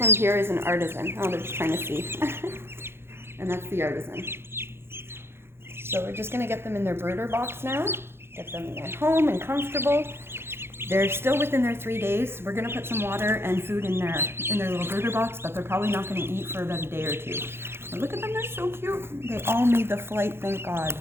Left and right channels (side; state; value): left; late; 0.12 ms